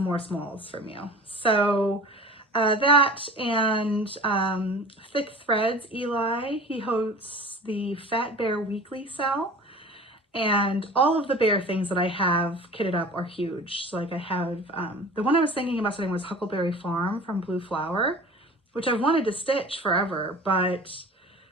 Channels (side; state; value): both; normal; correlation 0.40